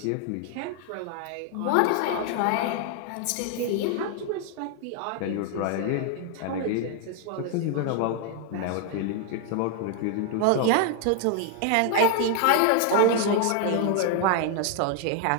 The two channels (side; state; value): both; different; correlation 0.00